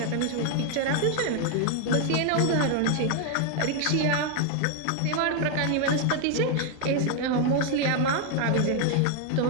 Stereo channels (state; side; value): different; both; correlation 0.00